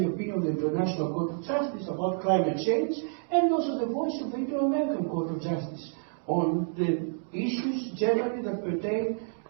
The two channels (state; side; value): silent; left; digital silence